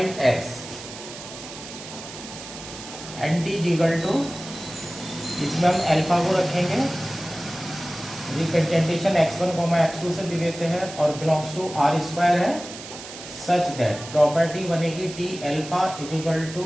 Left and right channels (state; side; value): noise; right; hiss, 13 dB below the sound